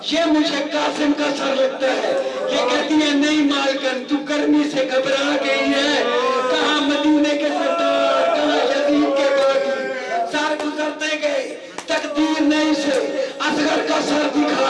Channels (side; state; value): both; identical; correlation 1.00